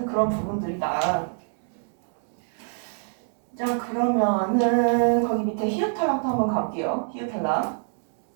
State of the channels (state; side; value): silent; left; 57 dB below the other